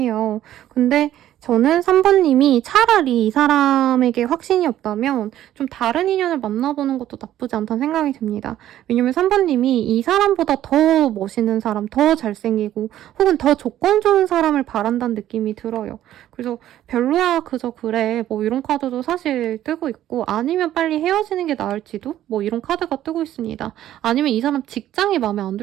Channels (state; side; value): quieter; left; 12.5 dB